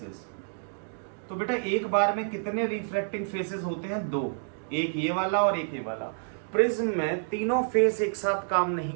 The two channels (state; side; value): silent; left; digital silence